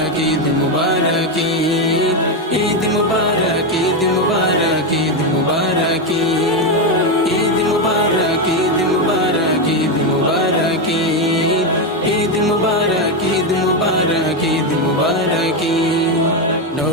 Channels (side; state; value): both; normal; correlation 0.08